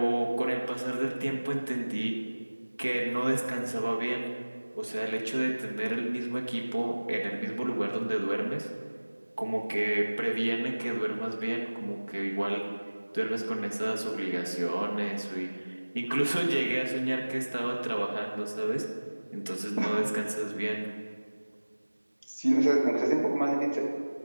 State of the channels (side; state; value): both; inverted; correlation -1.00